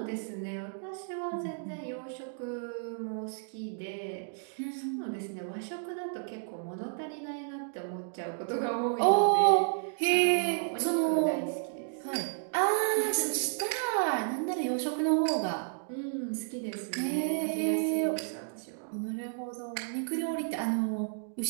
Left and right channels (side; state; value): left; silent; digital silence